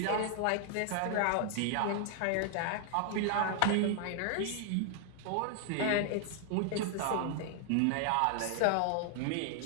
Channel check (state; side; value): different; both; correlation 0.00